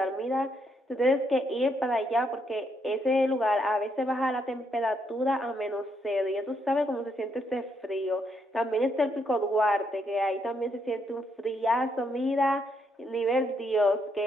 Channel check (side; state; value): both; normal; correlation 0.76